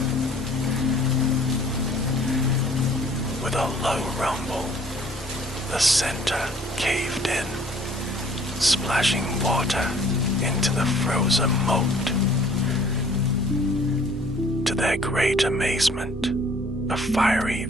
With a low rumble, the center caved in, splashing water into the frozen moat. To their great amazement, a fiery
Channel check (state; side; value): normal; both; correlation 0.56